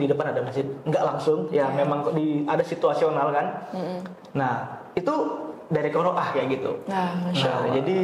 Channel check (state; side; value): identical; both; correlation 1.00